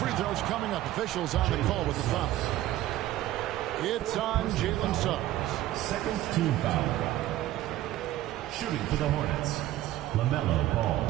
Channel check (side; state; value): left; quieter; 14.4 dB